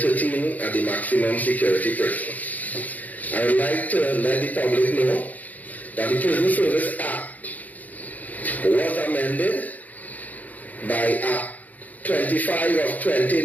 13 at the maximum security prison. I would like to let the public know that the Prison Service Act was amended by Act 25 of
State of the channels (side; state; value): right; late; 0.079 ms